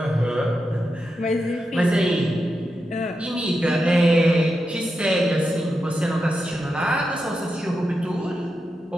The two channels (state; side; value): normal; both; correlation 0.88